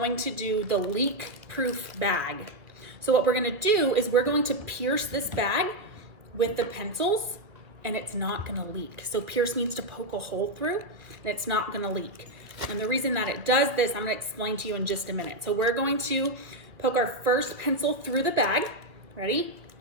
to do the leak-proof bag. So what we're going to do is we're going to pierce this bag with the pencils, and it's not going to leak. So pierce means to poke a hole through, and it's not going to leak. And the reason that it does this, I'm going to explain to you in just a minute. So we're going to poke our first pencil through the bag. Ready?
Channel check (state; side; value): late; left; 2.2 ms